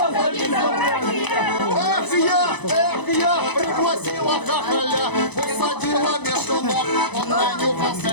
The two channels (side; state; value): right; late; 0.99 ms